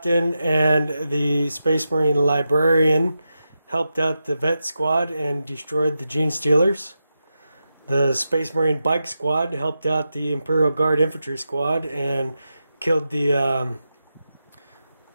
and the Space Marine librarian helped out the vet squad and destroyed the Gene Stealers. The Space Marine bike squad helped out the Imperial Guard infantry squad and killed the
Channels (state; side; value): inverted; both; correlation -0.89